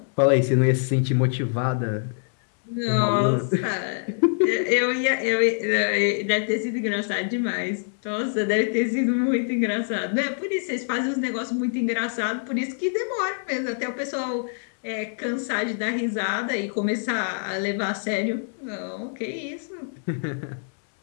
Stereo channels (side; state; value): right; silent; digital silence